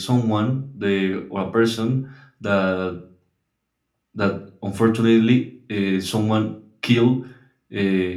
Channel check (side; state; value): both; identical; correlation 1.00